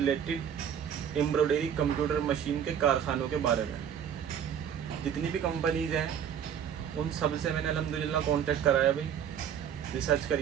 एम्ब्रॉयडरी कंप्यूटर मशीन के कारखानों के बारे में। जितनी भी कंपनीज हैं उन सब से मैंने अल्हम्दुलिल्लाह कांटेक्ट कराया भाई, रिसर्च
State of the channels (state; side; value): quieter; left; 8.6 dB